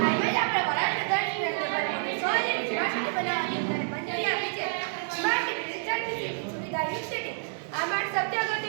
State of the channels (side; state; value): left; silent; 59 dB below the other